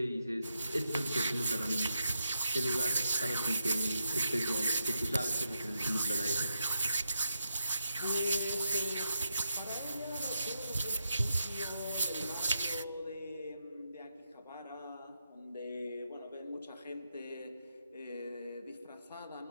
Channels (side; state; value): both; inverted; correlation -0.83